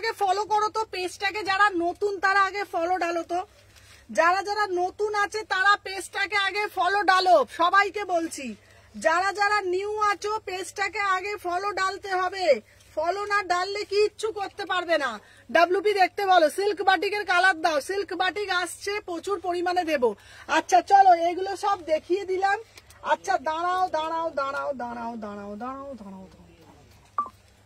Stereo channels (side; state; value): both; identical; correlation 1.00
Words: ফলো করো তো পেজটাকে, যারা নতুন তারা আগে ফলো ডালো তো, যারা যারা নতুন আছে তারা পেজটাকে আগে ফলো ডালো, সবাইকে বলছি। যারা যারা নিউ আছো পেজটাকে আগে ফলো ডালতে হবে, ফলো না ডাললে কিচ্ছু করতে পারবে না। ডাব্লুপি দেখতে বলো, সিল্ক বাটিকের কালার দাও, সিল্ক বাটিক আসছে প্রচুর পরিমাণে দেবো। আচ্ছা চলো এগুলো সব দেখিয়ে দিলাম। আচ্ছা দাঁড়াও দাঁড়াও দাঁড়াও দাঁড়াও দাঁড়াও দাঁড়াও দাঁড়াও দাঁড়াও,